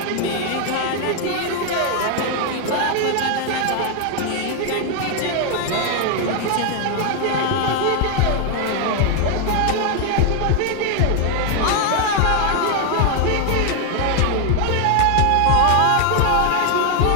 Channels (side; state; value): both; different; correlation 0.01